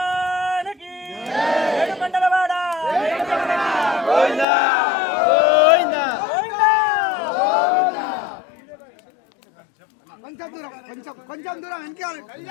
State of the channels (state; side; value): drops out; right; at 4.5 s